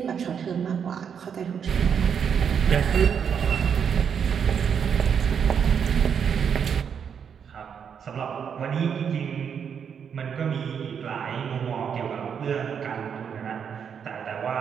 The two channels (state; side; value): quieter; left; 7.4 dB